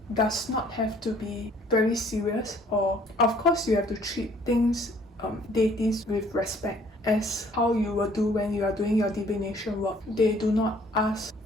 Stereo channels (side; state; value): both; normal; correlation 0.59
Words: does not have to be very serious, or of course you have to treat things, deities, with respect, as how you will do when you are doing your divination work. They do not ask